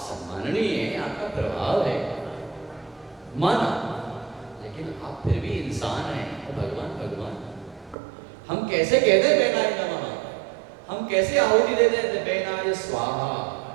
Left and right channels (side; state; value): left; drops out; at 8.0 s